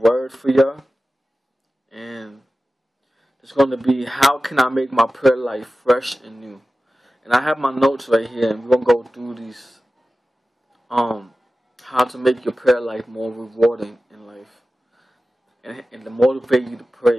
for y'all, and it's going to be how can I make my prayer life fresh and new. And I have my notes right here, and we're going to go through these, how to make your prayer life more rewarding in life, and to motivate you to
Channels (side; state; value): both; normal; correlation 0.95